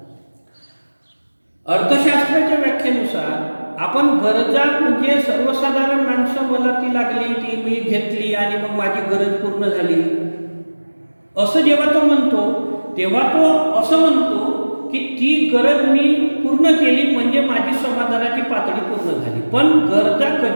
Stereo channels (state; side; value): inverted; both; correlation -1.00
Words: अर्थशास्त्राच्या व्याख्येनुसार आपण गरजा म्हणजे सर्वसाधारण माणसं, मला ती लागली, ती मी घेतली आणि मग माझी गरज पूर्ण झाली, असं जेव्हा तो म्हणतो तेव्हा तो असं म्हणतो की ती गरज मी पूर्ण केली म्हणजे माझी समाधानाची पातळी पूर्ण झाली. पण गरजा